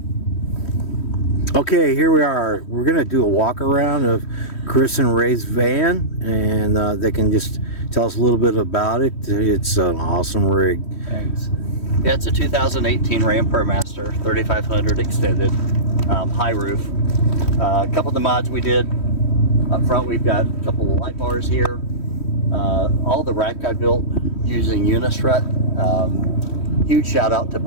Okay, here we are. We're going to do a walk around of Chris and Ray's van, and they can just tell us a little bit about it. It's an awesome rig. Thanks. Yeah, it's a 2018 Ram ProMaster 3500 extended, high roof. A couple of the mods we did up front, we've got a couple of light bars here. All the rack I built using Unistrut. Huge shout out to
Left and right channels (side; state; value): right; late; 3.1 ms